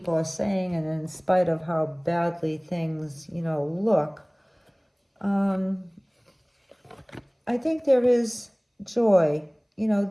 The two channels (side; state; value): both; identical; correlation 1.00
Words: are saying, and in spite of how badly things, look, I think there is joy, you know,